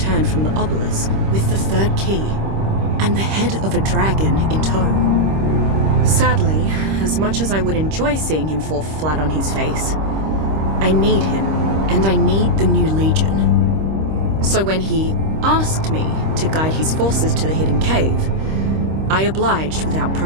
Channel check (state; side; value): late; left; 26 ms